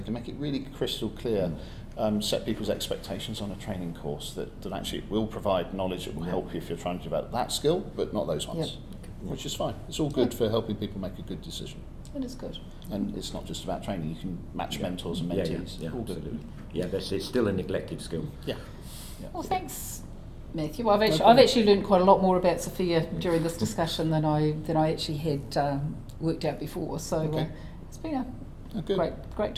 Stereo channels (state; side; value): identical; both; correlation 1.00